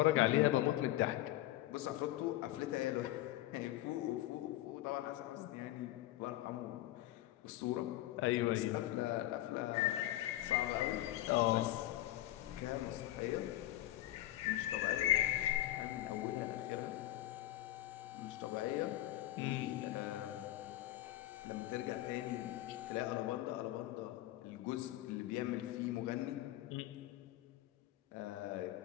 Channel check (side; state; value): right; quieter; 15.3 dB